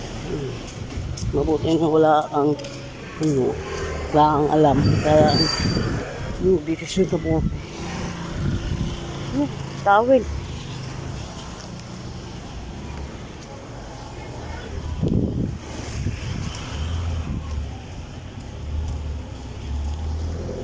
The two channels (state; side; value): identical; both; correlation 1.00